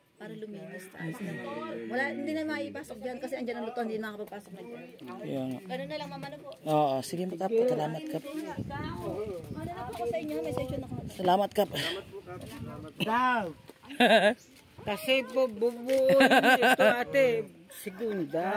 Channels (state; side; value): identical; both; correlation 1.00